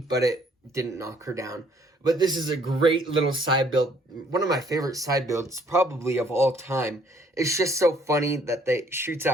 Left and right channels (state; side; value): normal; both; correlation 0.63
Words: but it didn't knock her down. But this is a great little side build. One of my favorite side builds, probably of all time. It's just so funny that they shoots